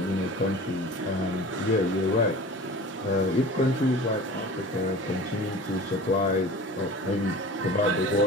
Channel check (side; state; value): both; normal; correlation 0.40